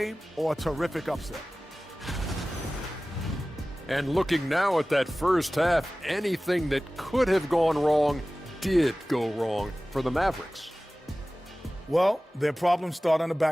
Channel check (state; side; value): normal; both; correlation 0.97